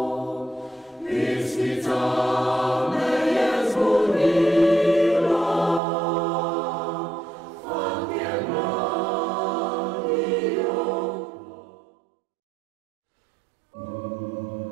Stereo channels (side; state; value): left; drops out; at 5.8 s